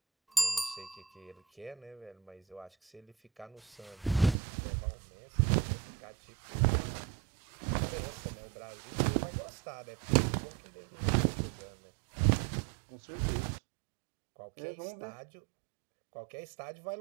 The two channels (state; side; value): drops out; left; at 4.4 s